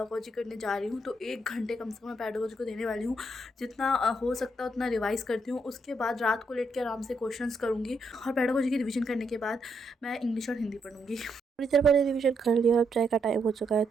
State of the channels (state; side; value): normal; both; correlation 0.77